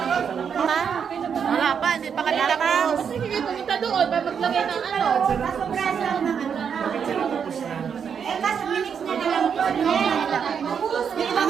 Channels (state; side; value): quieter; left; 7.1 dB